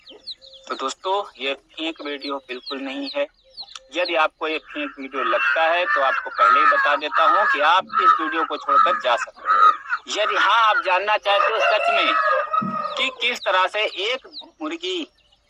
तो दोस्तों ये फेक वीडियो बिल्कुल नहीं है। यदि आपको ये फेक वीडियो लगता है तो आपको पहले ही बता देता हूँ कि आप इस वीडियो को छोड़कर जा सकते हैं। यदि हाँ आप जानना चाहते हो सच में कि किस तरह से एक मुर्गी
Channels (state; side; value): identical; both; correlation 1.00